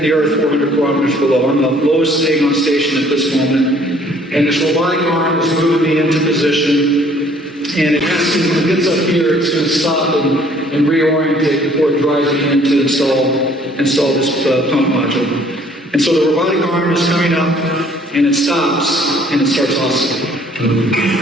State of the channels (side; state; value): both; normal; correlation 0.59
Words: the Earth 400 kilometers below. I'm the lowest thing on station at this moment, and this robotic arm is moving me into position, and it has to, when it gets up here, it's going to stop and reorientate before it drives me in to install this pump module. And so the robotic arm is coming up, and it stops, and it starts oscillating.